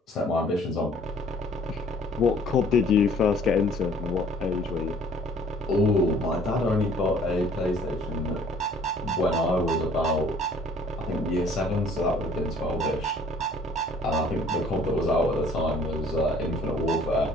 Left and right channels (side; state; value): both; normal; correlation 0.56